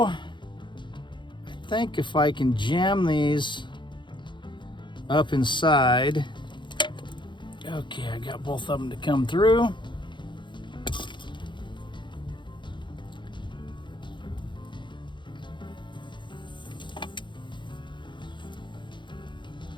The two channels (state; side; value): late; right; 0.23 ms